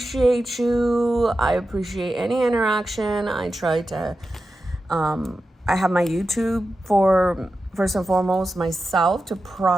you. I appreciate any interaction. I try to, I have my YouTube for, first and foremost, myself to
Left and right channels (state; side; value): normal; both; correlation 0.91